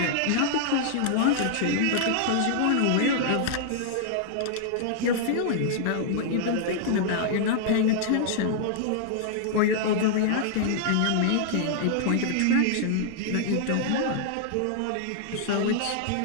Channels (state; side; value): different; both; correlation -0.01